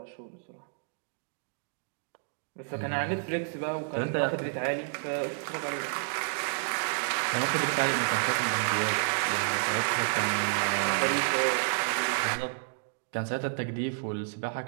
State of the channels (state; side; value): silent; left; digital silence